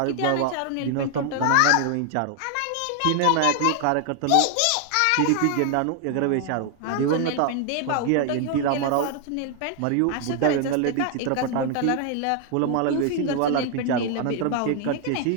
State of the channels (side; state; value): both; different; correlation 0.00